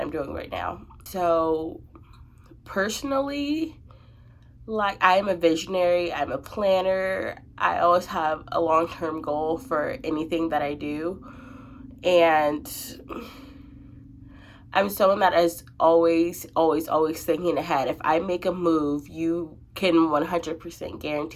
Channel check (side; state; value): both; identical; correlation 1.00